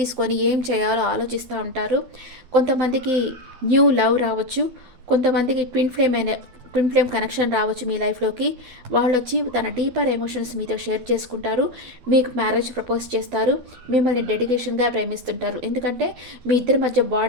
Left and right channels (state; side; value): late; left; 12 ms